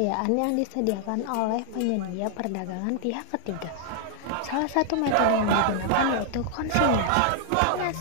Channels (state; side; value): different; both; correlation 0.00